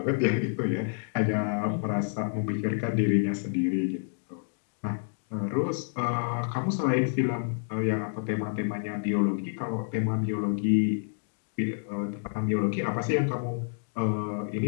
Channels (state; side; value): silent; right; digital silence